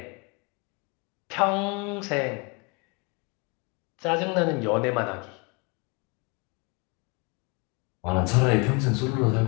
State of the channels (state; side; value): quieter; right; 30.9 dB